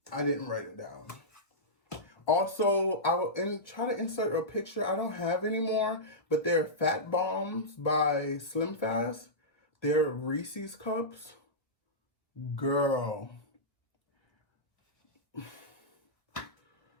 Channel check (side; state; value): right; late; 1.5 ms